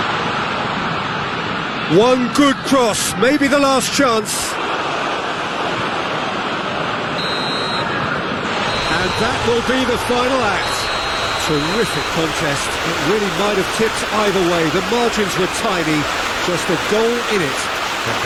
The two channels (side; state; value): both; identical; correlation 1.00